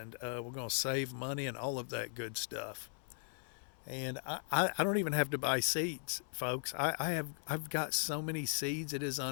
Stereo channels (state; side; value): silent; right; 52 dB below the other